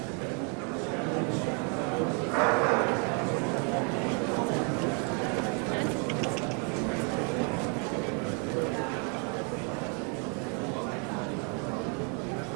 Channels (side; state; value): left; quieter; 36.9 dB